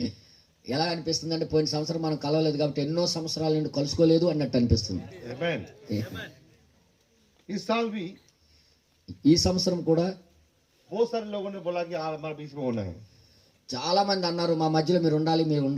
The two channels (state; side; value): identical; both; correlation 1.00